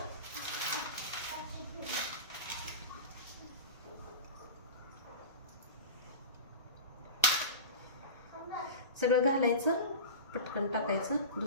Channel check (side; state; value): both; inverted; correlation -0.31